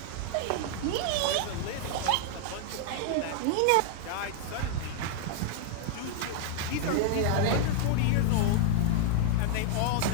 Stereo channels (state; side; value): different; both; correlation 0.00